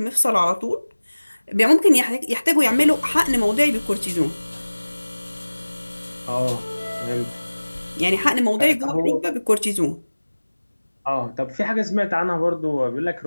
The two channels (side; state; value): both; inverted; correlation -1.00